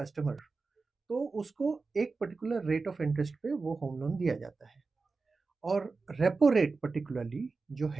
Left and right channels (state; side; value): quieter; left; 4.1 dB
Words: कस्टमर, तो उसको एक पर्टिकुलर रेट ऑफ इंटरेस्ट पे वो होम लोन दिया जाता है। और रेपो रेट पर्टिकुलरली जो